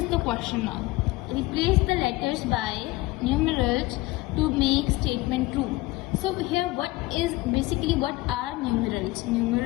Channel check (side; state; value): right; quieter; 20.1 dB